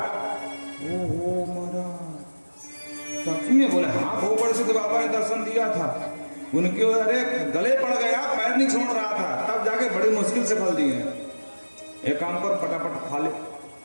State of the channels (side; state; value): both; inverted; correlation -1.00